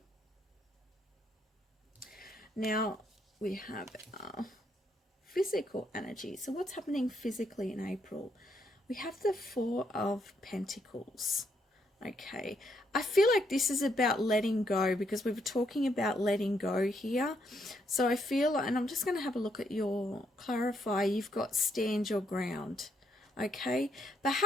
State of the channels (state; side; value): normal; both; correlation 0.75